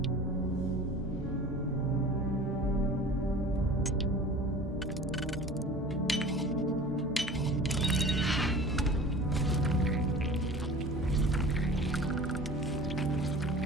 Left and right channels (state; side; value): normal; both; correlation 0.40